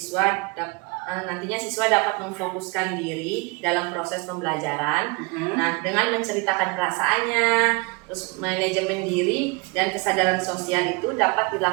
nantinya siswa dapat memfokuskan diri dalam proses pembelajaran. Nah, dengan menceritakan perasaannya, terus manajemen diri dan kesadaran sosial itu dapat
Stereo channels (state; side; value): quieter; left; 28.2 dB